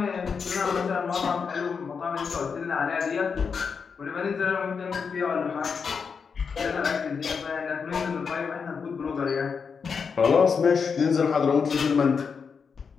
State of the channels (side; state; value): right; quieter; 5.8 dB